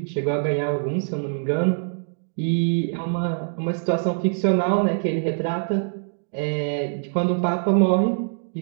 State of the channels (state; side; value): silent; left; digital silence